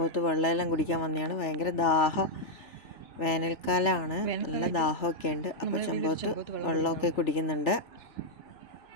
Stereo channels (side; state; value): right; late; 3.3 ms